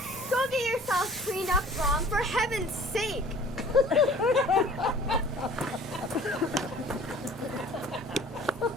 I'll clean up, Brom, for heaven's sake.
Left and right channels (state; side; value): normal; both; correlation 0.49